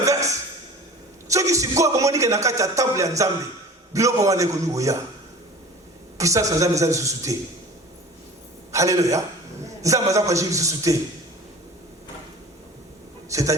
Ceux qui se croient comme on dit qu'il y a un temple en Zambie, biloko wane konu goya. Puissance en Zambie ça se soutient. Alléluia. Zambie ça pas juste se soutient.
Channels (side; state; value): both; normal; correlation 0.41